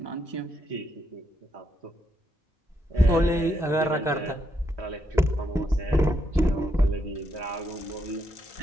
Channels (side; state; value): both; normal; correlation 0.78